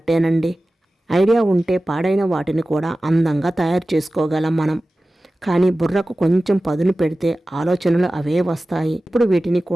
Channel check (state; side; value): normal; both; correlation 0.96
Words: ఐడియా ఉంటే పాడైన వాటిని కూడా అందంగా తయారు చేసుకోగలం మనం. కానీ బుర్రకు కొంచెం పదును పెడితే ఆలోచనలు అవే వస్తాయి. ఇప్పుడు వీటిని